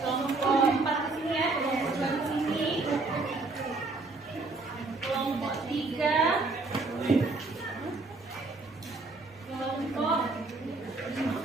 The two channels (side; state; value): left; quieter; 3.5 dB